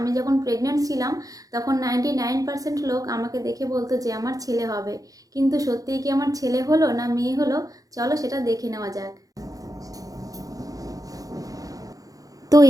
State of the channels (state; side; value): late; left; 0.17 ms